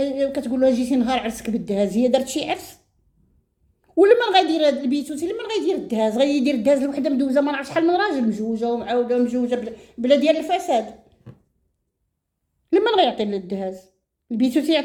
كتقول لها جيتي نهار عرسك بالدهاز؟ هي دارت شي عرس؟ ولما غيدير هاد البيتوتي لما غيدير الدهاز؟ غيدير الدهاز لوحده مدوزه ما نعرف شحال من راجل، مجوجه ومعاوده ومجوجه بلا ديال الفساد. لما غيعطي الدهاز؟ البيتوتي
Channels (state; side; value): identical; both; correlation 1.00